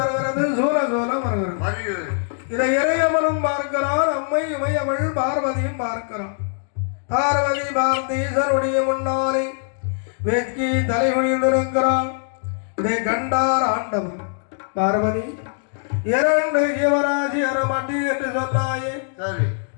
சூல சூல வருகிறது. இதை இறையவனும் பார்க்கிறான், அம்மை இமையவள் பார்வதியும் பார்க்கிறான். பார்வதி பார்த்து ஈசனுடைய முன்னாலே வெட்கி தலை குனிந்திருக்கிறான். இதை கண்டார் ஆண்டவன். பார்வதி 2 ஜீவராசி அறமாட்டி என்று சொன்னாயே,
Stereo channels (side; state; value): right; silent; digital silence